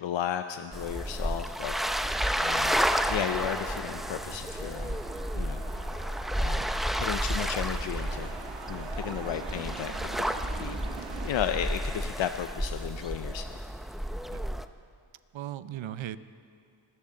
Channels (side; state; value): both; normal; correlation 0.63